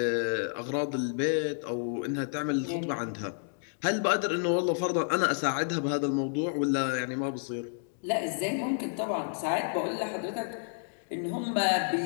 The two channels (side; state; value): right; silent; digital silence